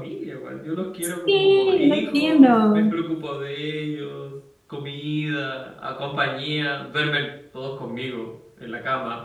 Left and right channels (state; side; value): identical; both; correlation 1.00